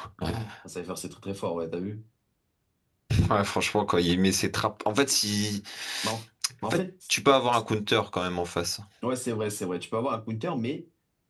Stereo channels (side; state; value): both; identical; correlation 1.00